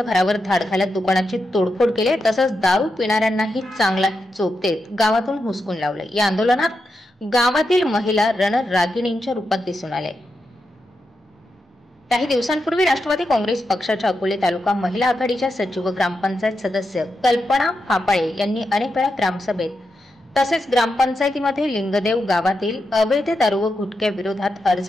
घरावर धाड घालत दुकानाची तोडफोड केली, तसंच दारू पिणाऱ्यांनाही चांगला चोप देत गावातून हुसकून लावले। या आंदोलनात गावातील महिला रणरागिणींच्या रूपात दिसून आले। काही दिवसांपूर्वी राष्ट्रवादी काँग्रेस पक्षाच्या अकोले तालुका महिला आघाडीच्या सचिव व ग्रामपंचायत सदस्य कल्पना फापाळे यांनी अनेक वेळा ग्रामसभेत तसेच ग्रामपंचायतीमध्ये लिंगदेव गावातील अवैध दारू व गुटख्या विरोधात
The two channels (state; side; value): normal; both; correlation 0.86